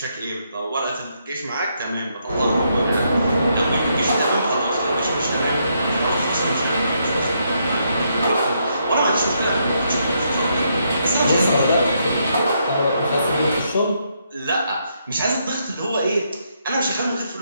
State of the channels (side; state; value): both; inverted; correlation -0.77